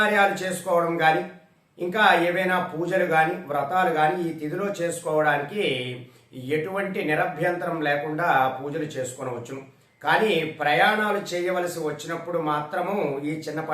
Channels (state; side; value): identical; both; correlation 1.00